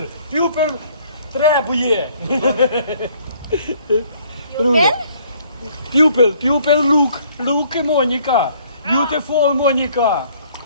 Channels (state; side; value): inverted; both; correlation -0.61